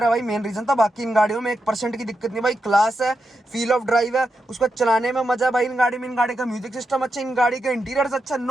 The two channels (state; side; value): normal; both; correlation 0.86